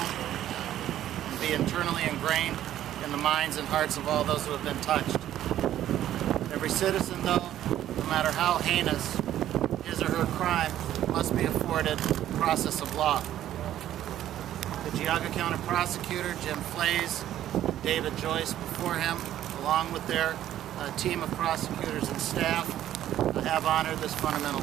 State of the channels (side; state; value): left; quieter; 12.2 dB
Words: and be internally ingrained in the minds and hearts of all those who have been touched. Every citizen, though, no matter how heinous his or her crime, must be afforded the process of law. The Geauga County prosecutor, Jim Plea, and David Joyce before him, along with their team of prosecutors and staff, have honored this fundamental